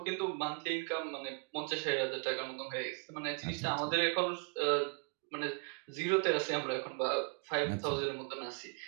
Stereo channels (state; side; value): quieter; left; 33.7 dB